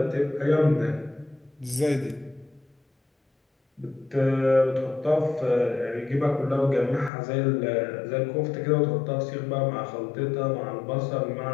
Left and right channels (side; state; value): right; drops out; at 7.1 s